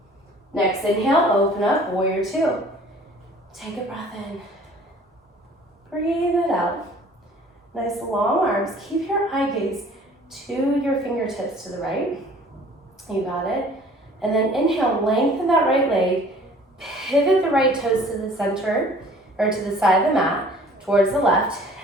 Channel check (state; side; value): normal; both; correlation 0.51